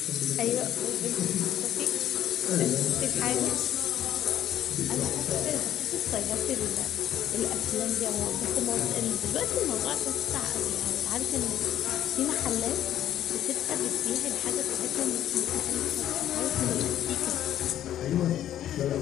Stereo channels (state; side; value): quieter; right; 11.6 dB